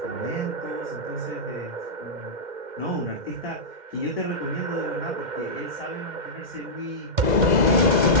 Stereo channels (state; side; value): late; left; 2.1 ms